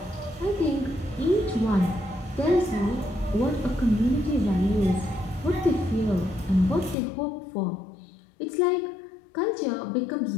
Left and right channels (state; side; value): drops out; right; at 7.0 s